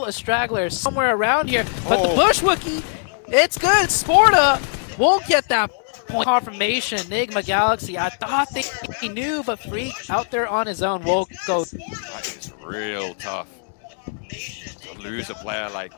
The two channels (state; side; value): silent; right; digital silence